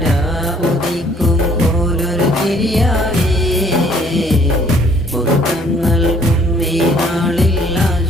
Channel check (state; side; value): normal; both; correlation 0.61